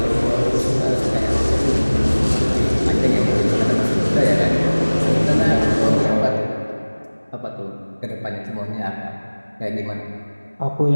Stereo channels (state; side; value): inverted; both; correlation -1.00